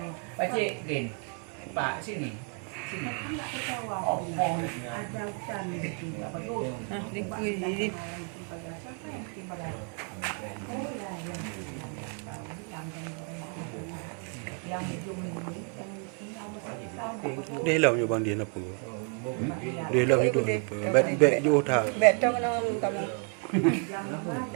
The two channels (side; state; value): left; quieter; 39.1 dB